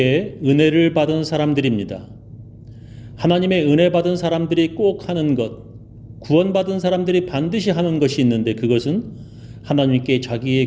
은혜를 받은 사람들입니다. 하나님의 은혜 받은 사람들이 꼭 하는 것, 구원받은 사람들이 반드시 하는 것이 있는데 그것은 하나님께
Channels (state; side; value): identical; both; correlation 1.00